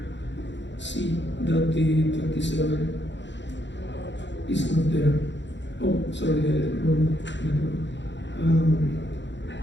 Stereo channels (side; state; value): right; late; 0.52 ms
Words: see that the 27 is not there. Oh, sorry, wrong network.